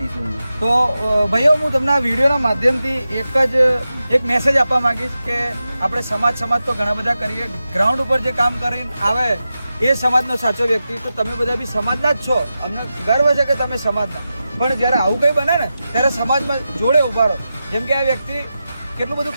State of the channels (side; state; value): both; inverted; correlation -0.91